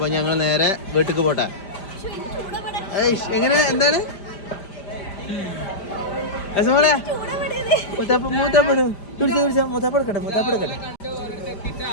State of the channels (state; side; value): late; right; 5.1 ms